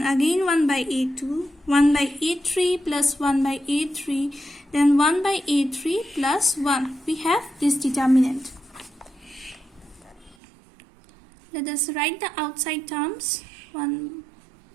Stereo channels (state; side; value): drops out; left; at 10.4 s